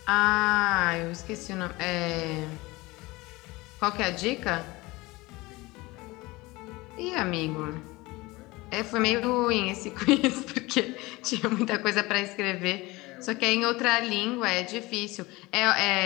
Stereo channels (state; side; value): quieter; right; 21.7 dB